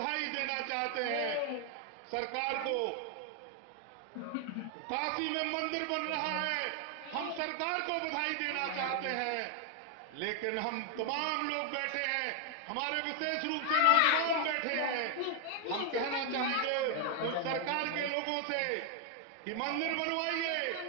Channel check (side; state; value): both; different; correlation 0.00